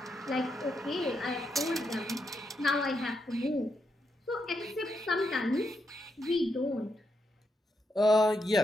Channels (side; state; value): both; normal; correlation 0.81